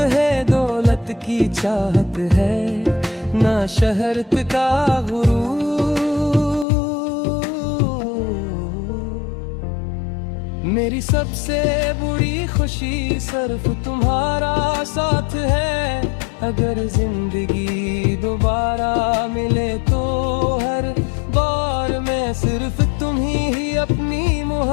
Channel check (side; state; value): right; drops out; at 6.7 s